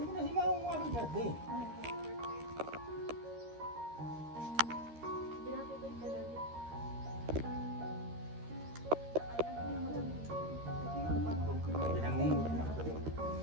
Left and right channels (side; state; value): left; late; 13 ms